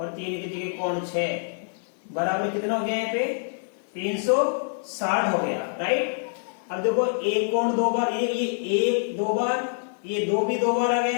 3 की जगह कोण 6। बराबर कितना हो गया यहाँ पे, 360 हो गया, राइट। अब देखो 1 कोण 2 बार, ये 1 2 बार, ये 2 भी 2 बार आ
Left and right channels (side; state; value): right; silent; 61 dB below the other